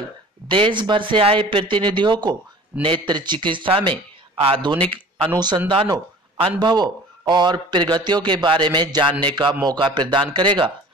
देश भर से आए प्रतिनिधियों को नेत्र चिकित्सा में आधुनिक अनुसंधानों, अनुभवों और प्रगतियों के बारे में जानने का मौका प्रदान करेगा,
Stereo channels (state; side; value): normal; both; correlation 0.44